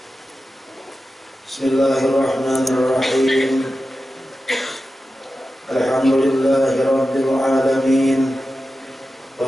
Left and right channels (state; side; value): normal; both; correlation 0.92